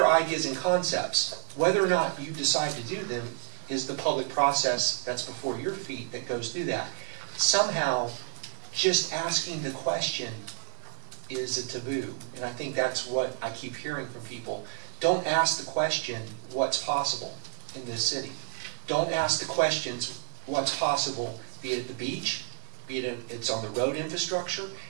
ideas and concepts. Whether or not you decide to do them is the public process that's before your feet that goes through that. Somehow, just asking the question is a taboo, and I think that's what I keep hearing from people. Don't ask the question, what's possible in this city? Don't ask the questions, what's possible, be it at the beach, be it it's on the road infrastructure,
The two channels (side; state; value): left; silent; digital silence